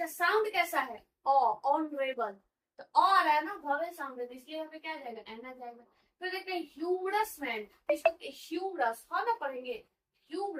साउंड कैसा है, ऑनरेबल, तो आ रहा है ना, वॉवेल साउंड है, तो इसलिए यहाँ पे क्या आ जाएगा, एन आ जाएगा। फिर देखते हैं ह्यूमरस मैन, इसको ह्यूमरस हा ना पढ़ेंगे,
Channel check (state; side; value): identical; both; correlation 1.00